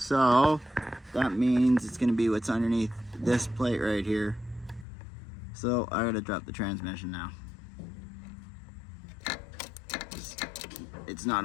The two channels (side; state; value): right; drops out; at 4.9 s